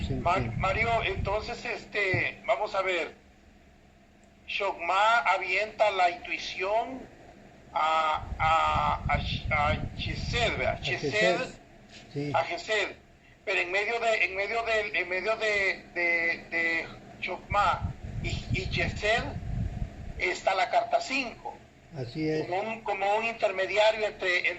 en que Mario, entonces, vamos a ver. Shogma avienta la intuición a Chesed, ¿verdad? a Gesed, Chesed sí, a Gesed. Pero en medio de Shogma y Chesed está la carta 5. así es. Como un intermediario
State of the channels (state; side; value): identical; both; correlation 1.00